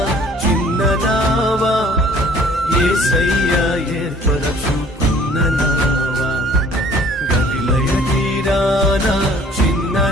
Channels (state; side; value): normal; both; correlation 0.55